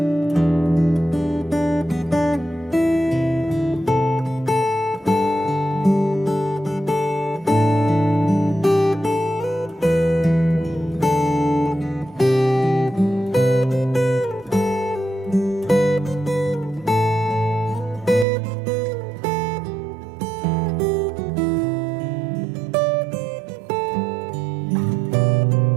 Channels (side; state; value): left; drops out; at 18.2 s